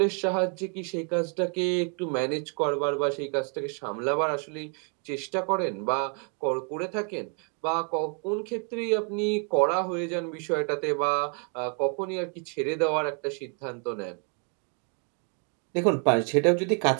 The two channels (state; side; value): quieter; left; 39.9 dB